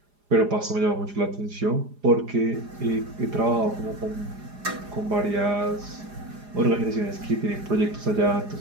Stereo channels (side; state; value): left; late; 4.9 ms